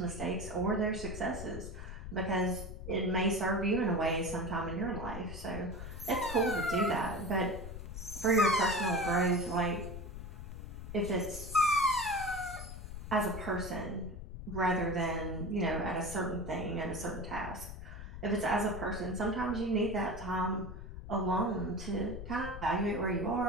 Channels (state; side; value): noise; left; rumble, 9 dB below the sound